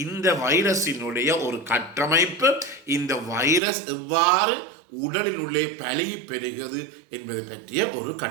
இந்த வைரஸினுடைய ஒரு கட்டமைப்பு. இந்த வைரஸ் எவ்வாறு உடலின் உள்ளே பழகி பெறுகிறது என்பதை பற்றிய ஒரு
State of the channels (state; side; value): drops out; left; at 3.6 s